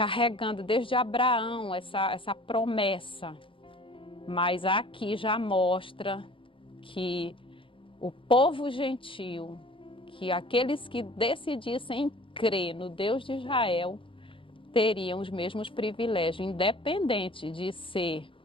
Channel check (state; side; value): late; right; 0.25 ms